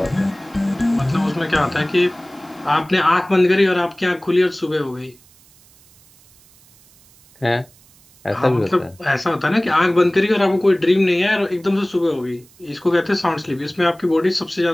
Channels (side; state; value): right; noise; hiss, 28 dB below the sound